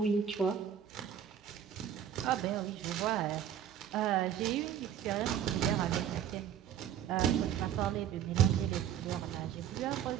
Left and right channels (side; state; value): left; quieter; 9.6 dB